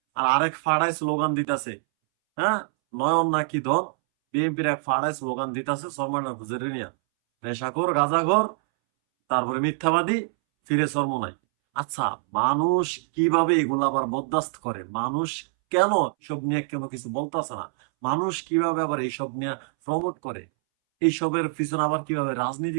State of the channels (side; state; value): left; silent; 62 dB below the other